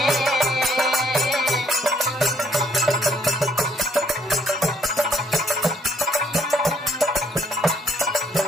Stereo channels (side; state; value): both; normal; correlation 0.67